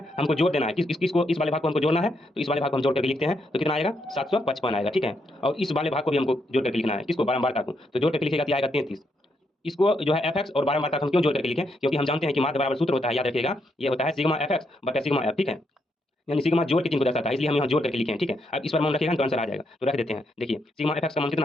हमको जोड़ देना है, किसको, इस वाले भाग को हमको जोड़ना है। तो इस वाले भाग को हम जोड़ करके लिखते हैं, तो कितना आएगा, 755 आएगा। ठीक है, और इस वाले भाग को भी हमको जोड़ करके लिखना है, किसको, बारंबारता को। तो जोड़ करके लिखेगा तो आएगा 33। इसको जो है एफ एक्स और बारंबारता को हम क्यों जोड़ करके लिखें, क्योंकि हम जानते हैं कि माध्य बराबर सूत्र होता है, याद रखिएगा, ये होता है सिग्मा एफ एक्स बटा सिग्मा एफ। ठीक है, यानी सिग्मा जोड़ के चिन्ह को दर्शाता है, इसलिए हम यहाँ जोड़ करके लिखे हैं। ठीक है, अब इस पर मान रखिएगा तो आंसर आ जाएगा। तो रख देते हैं, देखिए सिग्मा एफ एक्स का मान कितना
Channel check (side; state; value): both; normal; correlation 0.78